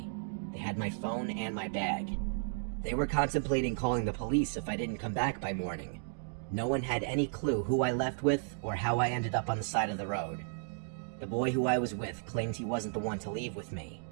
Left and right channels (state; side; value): silent; left; digital silence